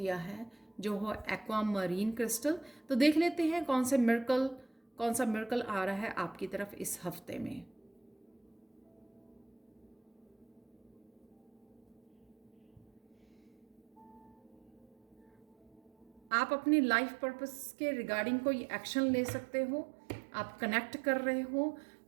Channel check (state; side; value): drops out; left; at 16.3 s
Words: है जो हो एक्वा मरीन क्रिस्टल, तो देख लेते हैं कौन सा मिरेकल आ रहा है आपकी तरफ इस हफ्ते में। आप अपनी लाइफ पर्पस के रिगार्डिंग कोई एक्शन ले सकते हो। आप कनेक्ट कर रहे हो,